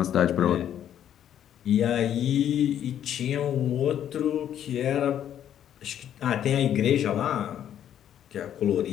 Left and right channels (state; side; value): quieter; right; 10.3 dB